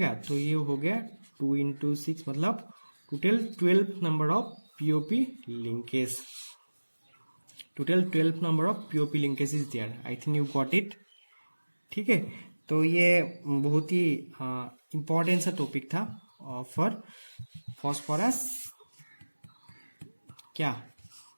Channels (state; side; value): inverted; both; correlation -1.00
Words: तो ये हो गया 2 × 6, मतलब total 12 number of POP linkage, total 12 number of POP linkage is there. I think you got it. ठीक है, तो ये बहुत ही इंपॉर्टेंट सा टॉपिक था फॉर फॉस्फोरस क्या,